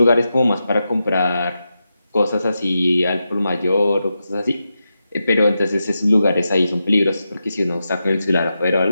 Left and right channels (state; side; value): inverted; both; correlation -0.89